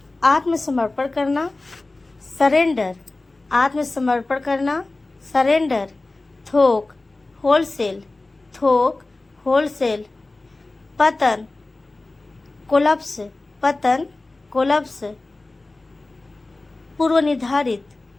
आत्मसमर्पण करना, सरेंडर, आत्मसमर्पण करना, सरेंडर। थोक, होलसेल, थोक, होलसेल। पतन, कोलप्स, पतन, कोलप्स। पूर्व निर्धारित,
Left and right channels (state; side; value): quieter; right; 3.1 dB